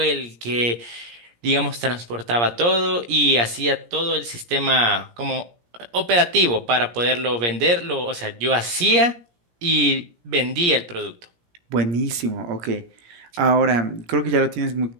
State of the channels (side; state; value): left; late; 17 ms